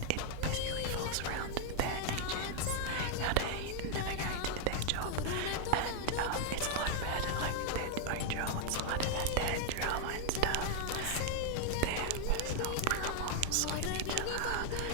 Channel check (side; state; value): both; different; correlation 0.00